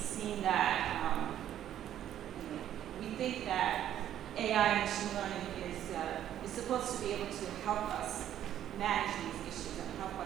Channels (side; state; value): left; quieter; 11.1 dB